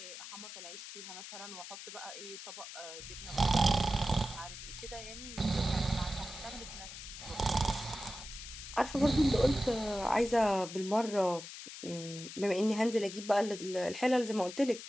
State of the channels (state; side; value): noise; left; hiss, 11 dB below the sound